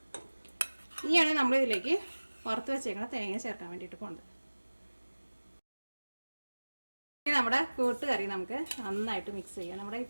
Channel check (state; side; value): inverted; both; correlation -1.00